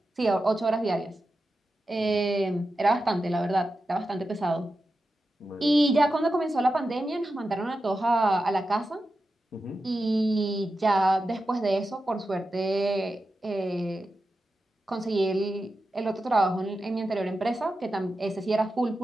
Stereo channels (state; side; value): normal; both; correlation 0.91